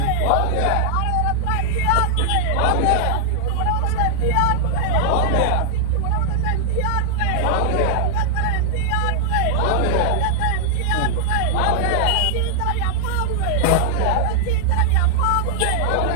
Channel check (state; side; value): different; both; correlation -0.01